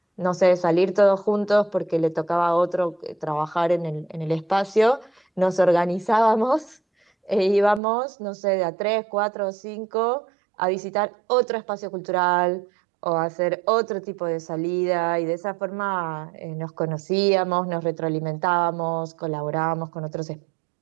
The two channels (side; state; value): left; drops out; at 7.8 s